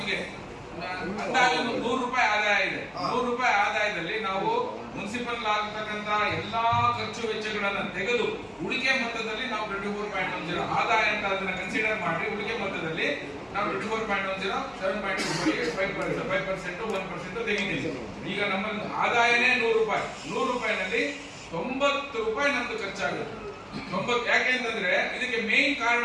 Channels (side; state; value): both; identical; correlation 1.00